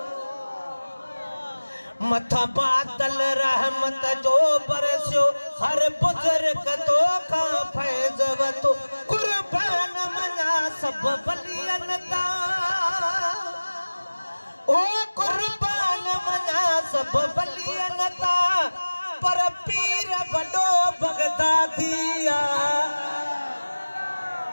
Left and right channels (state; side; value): inverted; both; correlation -1.00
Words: मथा बादल रहमत जो बरसियो हर बुजुर्ग तोखां फैज़ वतो कुर्बान मना सब बलियन ता ओ कुर्बान मना सब बलियन ता पर पीर वडो बगदादिया